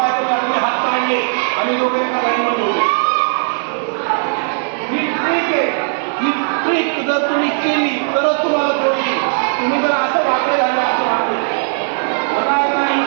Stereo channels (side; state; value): left; silent; 68 dB below the other